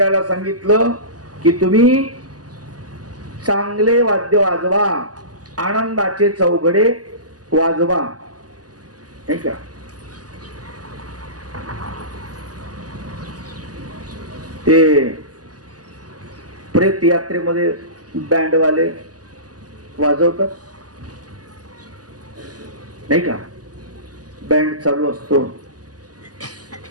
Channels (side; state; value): left; late; 0.67 ms